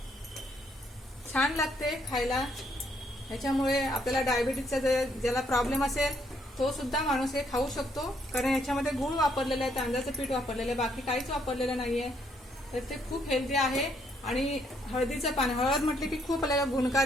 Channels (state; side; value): normal; both; correlation 0.71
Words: छान लागते खायला, याच्यामुळे आपल्याला डायबिटीजचा ज्याला प्रॉब्लेम असेल तो सुद्धा माणूस हे खाऊ शकतो, कारण याच्यामध्ये गूळ वापरलेलं आहे, तांदळाचं पीठ वापरलेलं आहे, बाकी काहीच वापरलेलं नाहीये। तर ते खूप हेल्दी आहे आणि हळदीचं पान, हळद म्हटले की खूप आपल्याला